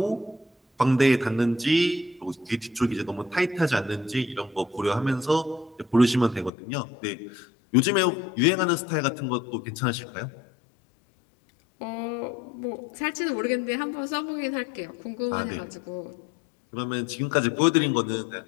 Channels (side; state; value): right; drops out; at 6.5 s